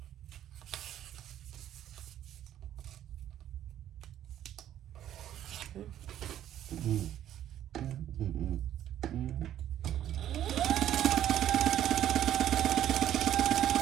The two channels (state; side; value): quieter; left; 11.5 dB